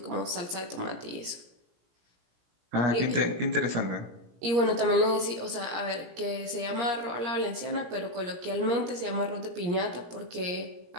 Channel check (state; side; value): late; left; 17 ms